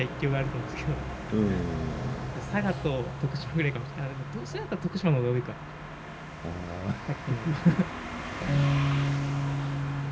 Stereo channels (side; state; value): both; identical; correlation 1.00